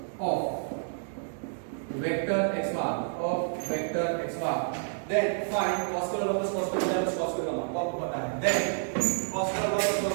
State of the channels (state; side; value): silent; left; digital silence